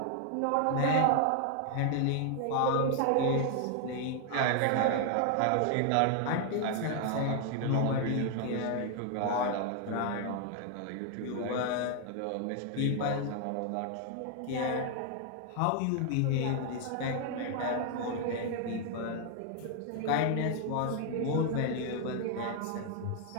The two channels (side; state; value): both; different; correlation 0.00